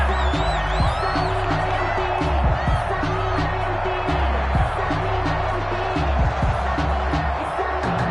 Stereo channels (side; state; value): both; identical; correlation 1.00